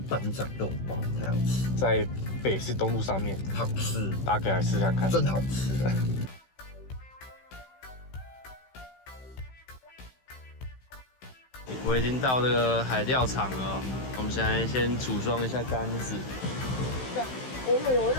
班长肉包太好吃，在北市东路上面，好吃，大家可以来试看看，真好吃。我已经到这个海钓场了，我们现在先组装一下杆子。哦，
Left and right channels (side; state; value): right; late; 16 ms